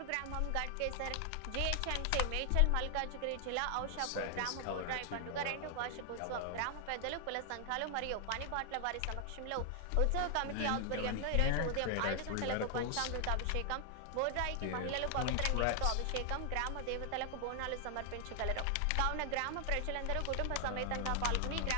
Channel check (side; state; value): both; different; correlation 0.00